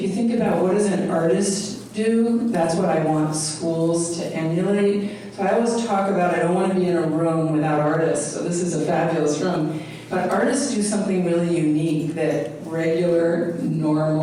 you think about what does an artist do, that's what I want schools to emulate. So I always talk about I don't want to be in a room without artists, so this is a fabulous room. But artists do something really unique that regular,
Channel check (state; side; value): identical; both; correlation 1.00